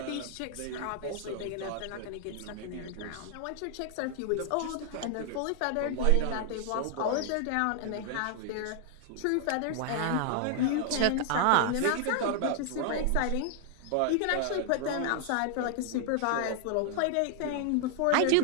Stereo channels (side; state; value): both; different; correlation 0.00